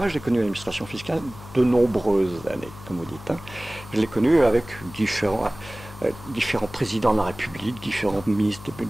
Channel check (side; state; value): left; noise; hum, 16 dB below the sound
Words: j'ai connu l'administration fiscale de nombreuses années, comme vous dites. Hein. Je l'ai connu avec différents présidents de la République, différents ministres